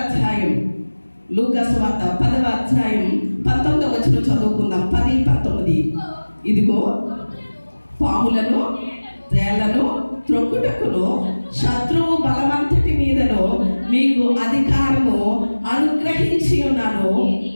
అధ్యాయం. లూకాసు వార్త 10వ అధ్యాయం 19వ వచనం చదువుకుందాం. 10-19. ఇదిగో పాములను, తేళ్లను త్రొక్కుటకును శత్రువు బలమంతటి మీదను మీకు అధికారము అనుగ్రహించి ఉన్నాను,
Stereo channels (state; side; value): inverted; both; correlation -1.00